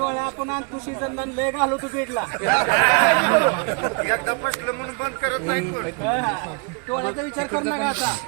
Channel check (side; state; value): left; quieter; 34.3 dB